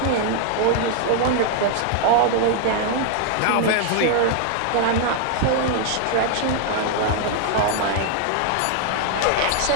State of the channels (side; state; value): both; different; correlation 0.00